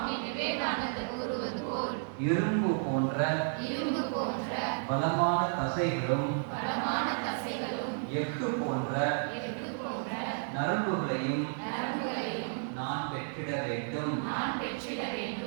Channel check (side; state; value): left; silent; digital silence